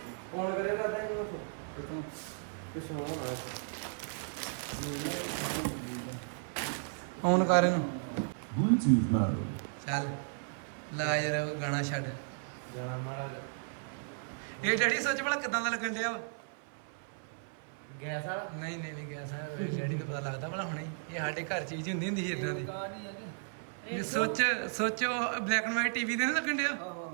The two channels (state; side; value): silent; left; 55 dB below the other